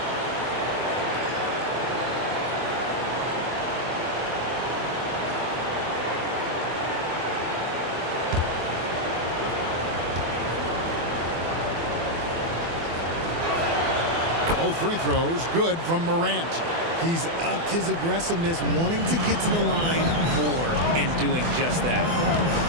Both free throws good from Morant. He's upped his aggressiveness, wanting to get to the line more and doing just that.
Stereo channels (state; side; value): late; left; 24 ms